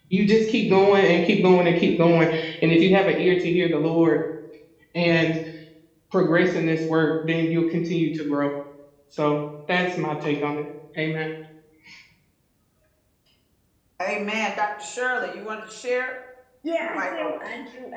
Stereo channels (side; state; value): both; identical; correlation 1.00